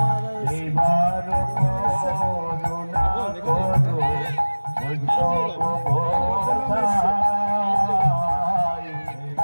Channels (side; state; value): both; inverted; correlation -1.00